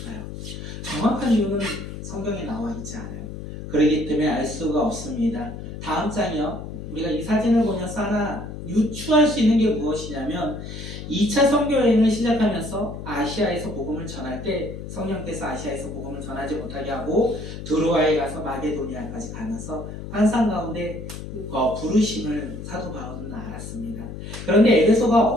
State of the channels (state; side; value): noise; left; hum, 9 dB below the sound